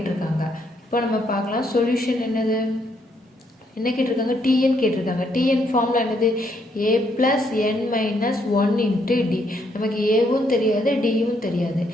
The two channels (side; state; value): both; normal; correlation 0.73